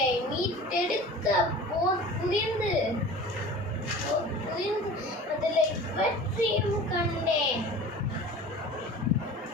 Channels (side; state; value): both; normal; correlation 0.39